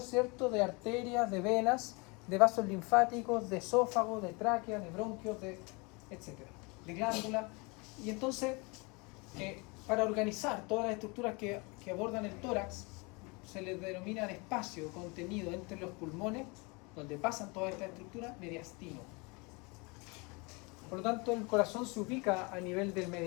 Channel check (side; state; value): right; quieter; 28.8 dB